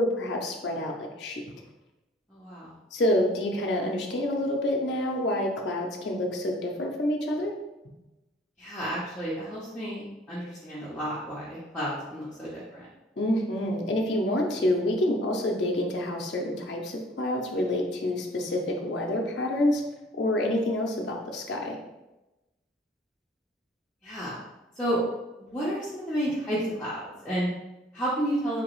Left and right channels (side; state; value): both; normal; correlation 0.52